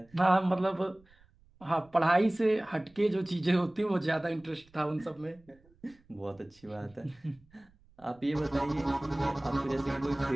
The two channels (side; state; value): right; noise; rumble, 30 dB below the sound